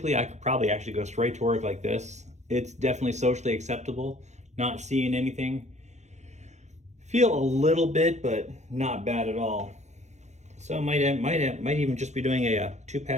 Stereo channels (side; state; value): left; late; 0.33 ms